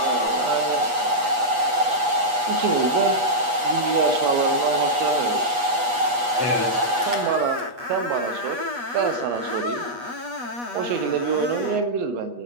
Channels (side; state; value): left; late; 8.3 ms